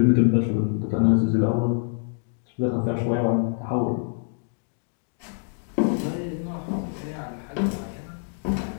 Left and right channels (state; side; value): silent; right; 61 dB below the other